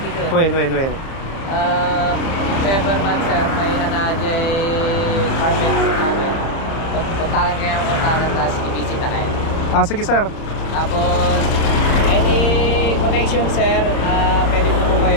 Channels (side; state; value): right; late; 30 ms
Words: ko. When? If ever man, sir, may anajay carpet namin. Puntakan kayo, tapos i-visit na kayo. Ah, sige sir. Tapos, any connection, sir, pwede po